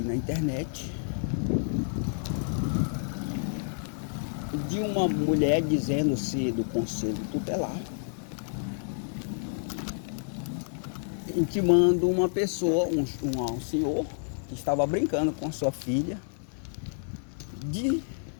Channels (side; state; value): right; silent; digital silence